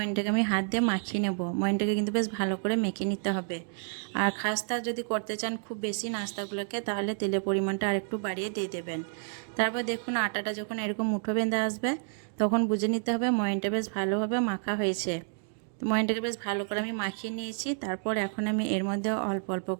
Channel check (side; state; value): left; silent; 58 dB below the other